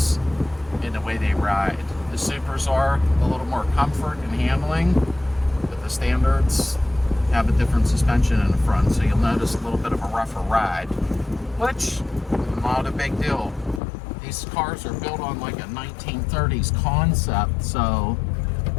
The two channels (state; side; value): drops out; right; at 13.8 s